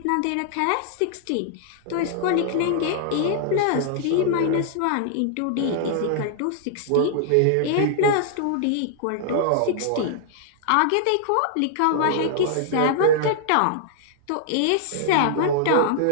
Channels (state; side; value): different; both; correlation -0.01